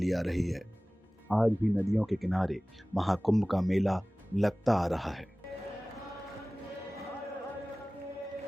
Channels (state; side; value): normal; both; correlation 0.98